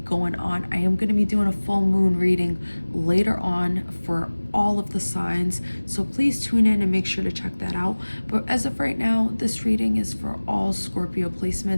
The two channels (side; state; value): both; inverted; correlation -1.00